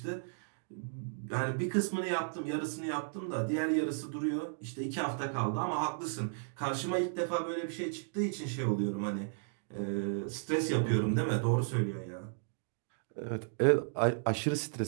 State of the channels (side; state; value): left; silent; digital silence